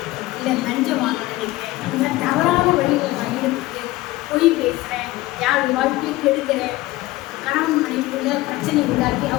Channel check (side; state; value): right; quieter; 18.4 dB